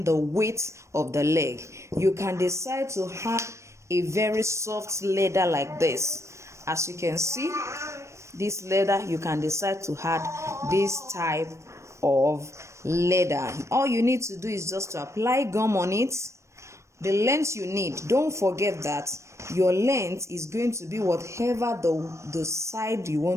the weight of the leg, you can decide to have a very soft leather like this. As you can see, this leather, you can decide to add this type of leather. All you need to do is just to apply gum on it. The length you need, don't forget that your length is going to be whatever the side you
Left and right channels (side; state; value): left; late; 0.14 ms